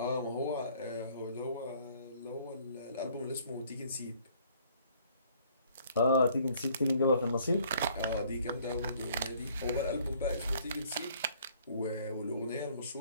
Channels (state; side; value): inverted; both; correlation -0.60